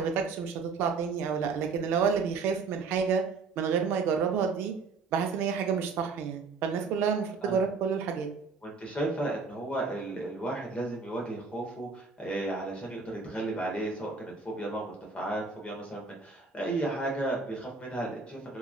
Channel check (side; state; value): left; quieter; 4.6 dB